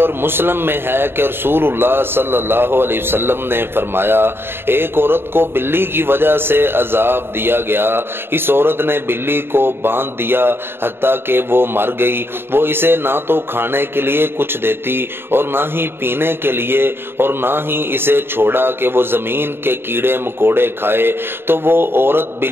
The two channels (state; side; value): late; left; 0.11 ms